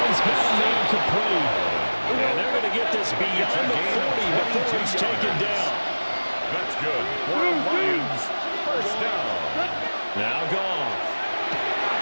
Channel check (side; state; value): both; inverted; correlation -1.00